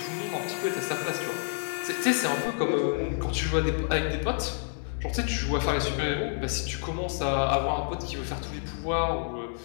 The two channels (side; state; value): right; silent; 59 dB below the other